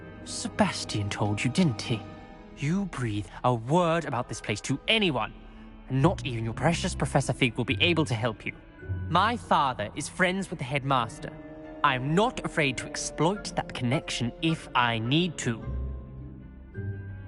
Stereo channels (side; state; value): both; identical; correlation 1.00